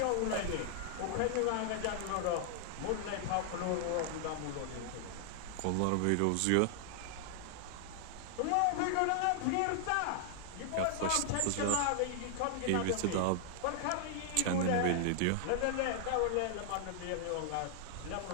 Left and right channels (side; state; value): both; different; correlation -0.01